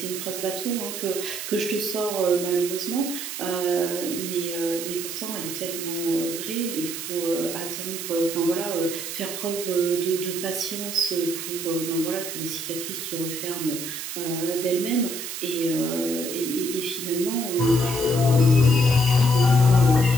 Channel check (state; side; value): noise; right; hiss, 6 dB below the sound